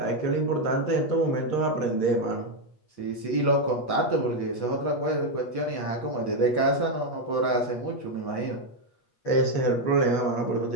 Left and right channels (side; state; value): right; late; 8.4 ms